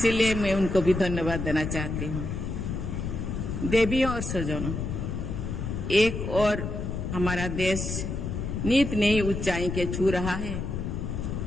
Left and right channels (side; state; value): left; noise; rumble, 4 dB below the sound